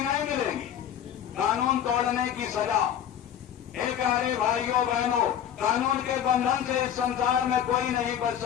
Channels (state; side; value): quieter; right; 9.7 dB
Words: नहीं मिलेगी? कानून तोड़ने की सजा। एक प्यारे भाइयों बहनों, कानून के बंधन से इस संसार में कोई नहीं बच